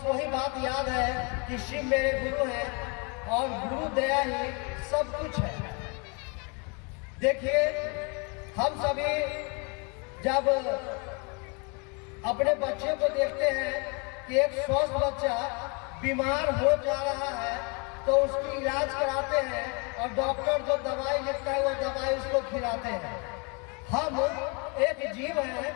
वही बात याद है कि शिव मेरे गुरु हैं और गुरु दया ही सब कुछ है। देखिए, हम सभी जब अपने बच्चे को देखते हैं कि एक स्वस्थ बच्चा बीमार हो जा रहा है तो उसकी इलाज कराते हैं और डॉक्टर जो दवाई लिखता है वो दवाई उसको खिलाते हैं। हम एक जीव हैं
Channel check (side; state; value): right; quieter; 32.8 dB